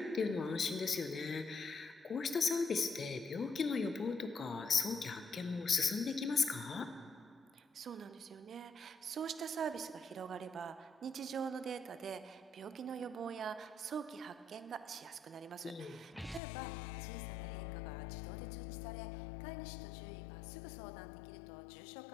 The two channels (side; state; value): right; drops out; at 16.4 s